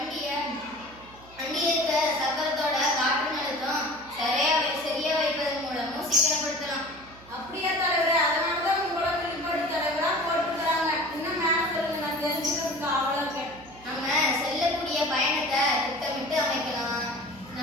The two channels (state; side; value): noise; right; hum, 22 dB below the sound